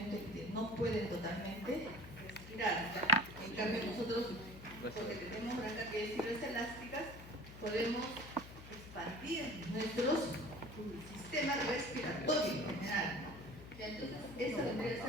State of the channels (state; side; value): noise; left; hum, 15 dB below the sound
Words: en que no pueden totalmente respirar. En cambio, nosotros, porque tenemos gran cantidad de fibras elásticas, podemos expandir nuestro sistema respiratorio en general. Entonces, esa vendría a